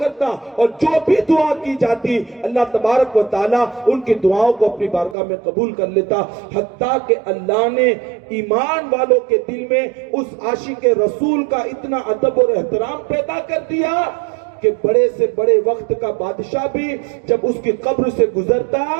اور جو بھی دعا کی جاتی اللہ تبارک و تعالیٰ ان کی دعاؤں کو اپنی بارگاہ میں قبول کر لیتا. حتیٰ کہ اللہ نے ایمان والوں کے دل میں اس عاشق رسول کا اتنا ادب اور احترام پیدا کر دیا کہ بڑے سے بڑے وقت کا بادشاہ بھی جب اس کی قبر سے گزرتا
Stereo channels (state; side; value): drops out; left; at 5.2 s